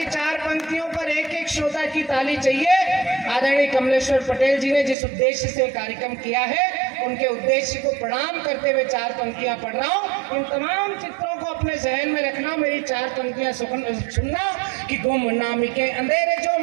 4 पंक्तियों पर एक एक श्रोता जोरदार की ताली चाहिए। आदरणीय कमलेश्वर पटेल जी ने जिस उद्देश्य से कार्यक्रम किया है, उनके उद्देश्य को प्रणाम करते हुए 4 पंक्तियां पढ़ रहा हूँ। इन तमाम चित्रों को अपने जहन में रखना, मेरी 4 पंक्तियां सुनना कि गुमनामी के अंधेरे जो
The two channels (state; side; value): drops out; left; at 5.0 s